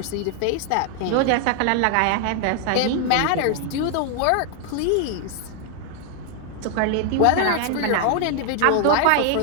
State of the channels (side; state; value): both; different; correlation 0.00